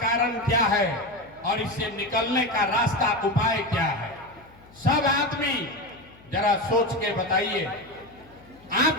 क्या है और इससे निकलने का रास्ता उपाय क्या है। सब आदमी जरा सोच के बताइए,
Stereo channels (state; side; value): noise; left; hum, 26 dB below the sound